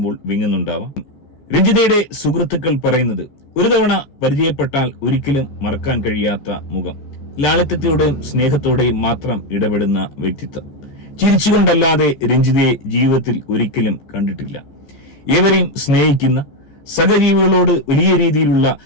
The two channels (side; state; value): right; late; 14 ms